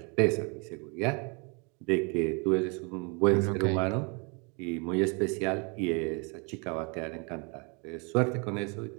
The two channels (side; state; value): left; quieter; 33.2 dB